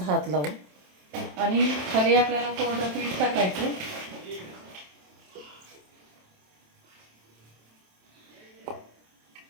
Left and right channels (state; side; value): late; left; 27 ms